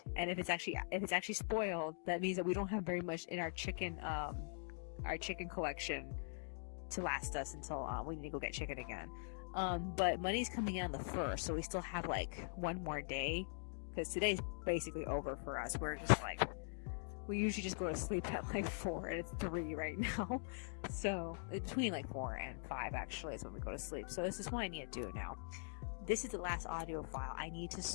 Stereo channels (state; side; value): silent; right; digital silence